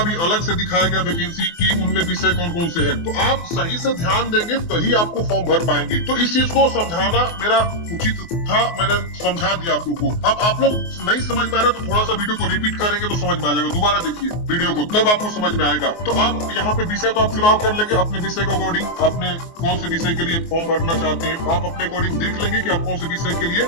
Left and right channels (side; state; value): right; late; 24 ms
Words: भी अलग से दिखाया गया वैकेंसी की उनमें विषय कौन कौन से है। तो आप सही से ध्यान देंगे तभी आपको फॉर्म भर पाएंगे। तो इस चीज को समझाना मेरा उचित था, मैंने समझा दिया आप लोग को। अब आप लोग नहीं समझ में आ रहा तो थोड़ा सा वीडियो को रिपीट करेंगे तो समझ में आ जाएगा, दोबारा देखिए वीडियो को, तब आपको समझ में आएगा। तो आप यहाँ पे विषय तो आप चुनाव कर लेंगे अपने विषय के अकॉर्डिंग, अपने कौन से विषय के लिए फॉर्म भरना चाहते हैं, आप अपने अकॉर्डिंग देख लेंगे कि आप कौन से विषय के लिए